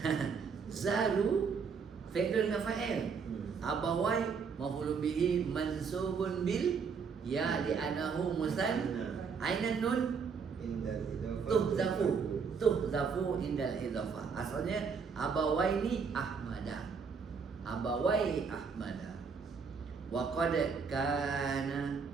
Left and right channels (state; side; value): quieter; left; 5.8 dB